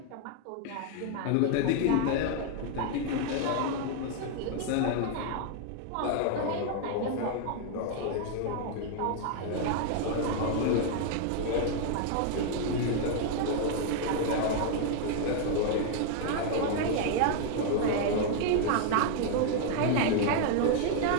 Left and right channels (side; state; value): both; different; correlation 0.00